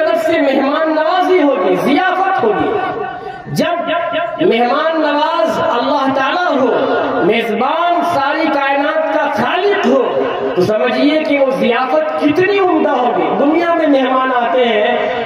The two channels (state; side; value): identical; both; correlation 1.00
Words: سے مہمان نوازی ہوگی، ضیافت ہوگی. جب مہمان نواز اللہ تعالیٰ ہو، میزبان ساری کائنات کا خالق ہو، تو سمجھیے کہ وہ ضیافت کتنی عمدہ ہوگی. دنیا میں مہمان آتے